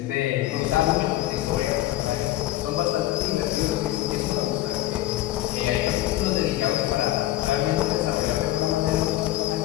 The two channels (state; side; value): quieter; right; 15.1 dB